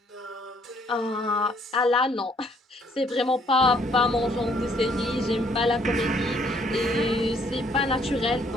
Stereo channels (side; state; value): both; normal; correlation 0.65